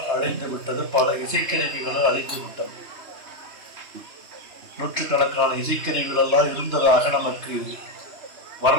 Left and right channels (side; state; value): left; late; 2.9 ms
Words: அழிந்து விட்டது, பல இசைக்கருவிகளும் அழிந்து விட்டது. நூற்றுக்கணக்கான இசைக்கருவிகள் எல்லாம் இருந்ததாக நமக்கு